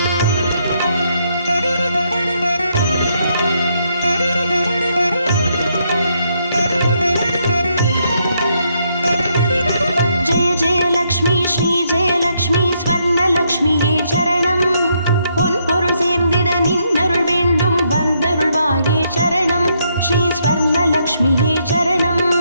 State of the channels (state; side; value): inverted; both; correlation -0.75